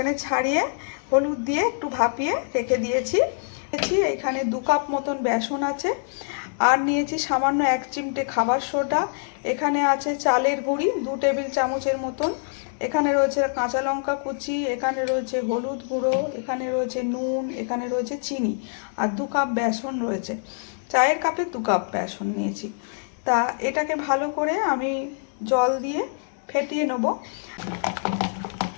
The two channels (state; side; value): silent; right; 58 dB below the other